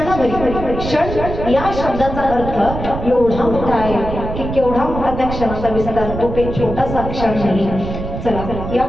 क्षण या शब्दाचा अर्थ एवढा मोठा आहे की केवढा मोठा त्या क्षणाचा विस्तार, तो काही छोटासा क्षण नाही. चला या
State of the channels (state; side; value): noise; right; rumble, 7 dB below the sound